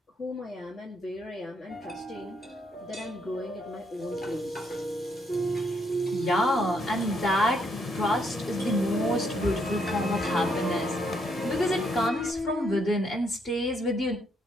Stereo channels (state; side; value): normal; both; correlation 0.74